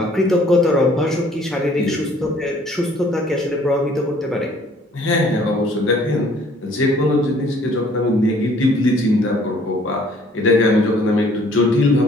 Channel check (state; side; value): normal; both; correlation 0.58